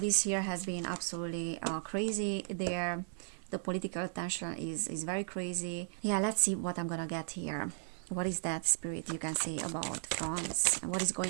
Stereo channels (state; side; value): silent; left; digital silence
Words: This year has been absolutely crazy there. The political tension is very crazy. Yeah, let's see what I'm gonna get here. What is that spirit you can say about France? What is